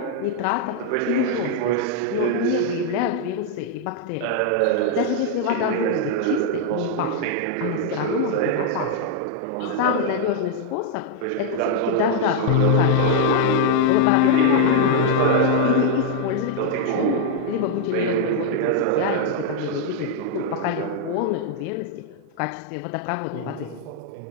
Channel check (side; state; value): both; different; correlation 0.00